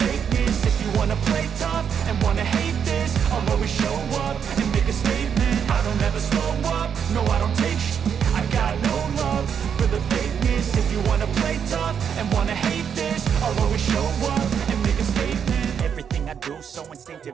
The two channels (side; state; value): left; quieter; 7.6 dB